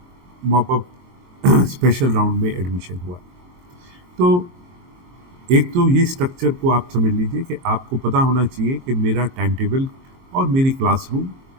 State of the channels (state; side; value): late; left; 22 ms